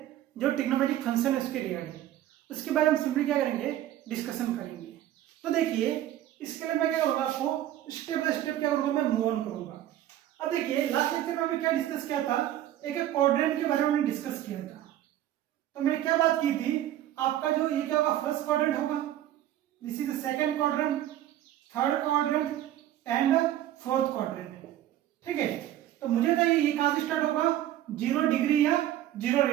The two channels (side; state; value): left; quieter; 12.7 dB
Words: जो ट्रिग्नोमेट्रिक फंक्शन है उसके रिगार्डिंग, उसके बारे में सिंपली क्या करेंगे, डिस्कशन करेंगे। तो देखिए इसके लिए मैं क्या करूँगा, आपको स्टेप बाय स्टेप क्या करूँगा, मैं मूव ऑन करूँगा। अब देखिए लास्ट लेक्चर में हमने क्या डिस्कस किया था, एक क्वाड्रेंट के बारे में हमने डिस्कस किया था। तो मैंने क्या बात की थी, आपका जो ये क्या होगा, फर्स्ट क्वाड्रेंट होगा, this is the second quadrant, third quadrant and fourth quadrant. ठीक है, तो मुझे बताइए ये कहां से स्टार्ट होगा, 0 डिग्री या 0